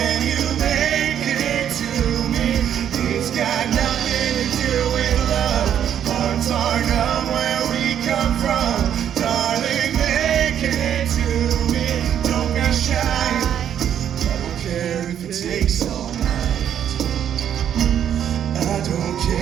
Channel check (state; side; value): quieter; left; 9.6 dB